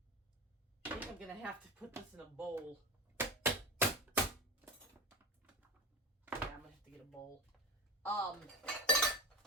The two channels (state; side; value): normal; both; correlation 0.23